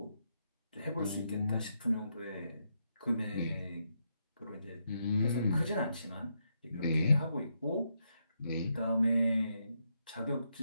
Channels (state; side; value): inverted; both; correlation -0.80